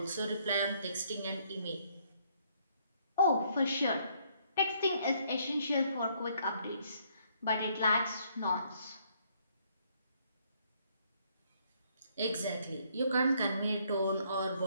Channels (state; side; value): inverted; both; correlation -0.68